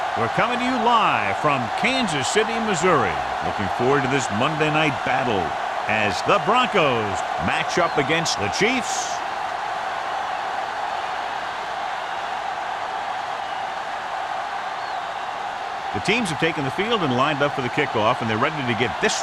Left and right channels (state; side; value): identical; both; correlation 1.00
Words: We're coming to you live from Kansas City, Missouri. Looking forward to this Monday night battle as the Broncos match up against the Chiefs. The teams have taken the field and lined up for the kickoff, and they're ready to get this